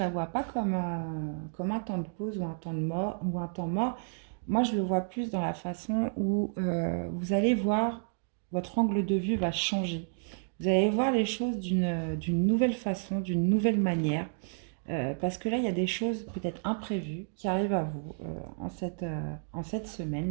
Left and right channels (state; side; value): silent; left; digital silence